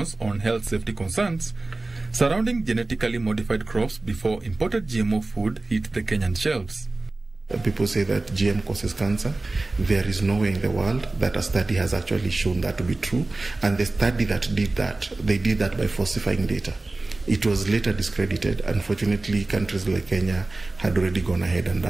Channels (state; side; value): quieter; left; 3.1 dB